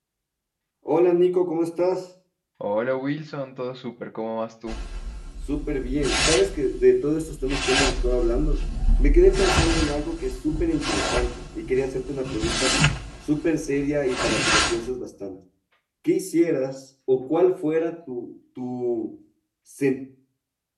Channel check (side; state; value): both; identical; correlation 1.00